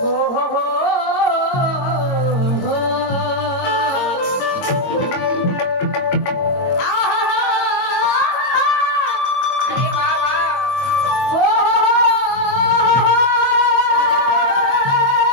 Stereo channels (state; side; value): late; right; 22 ms